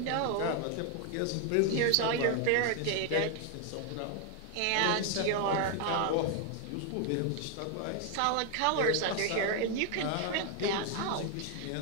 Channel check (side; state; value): both; different; correlation 0.01